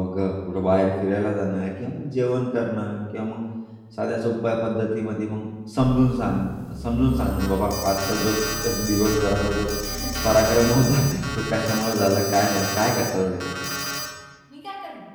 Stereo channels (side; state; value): both; identical; correlation 1.00